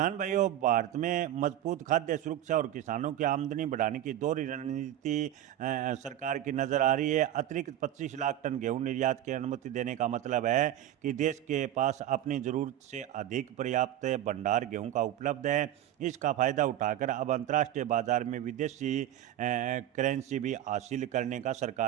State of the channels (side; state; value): left; quieter; 12.3 dB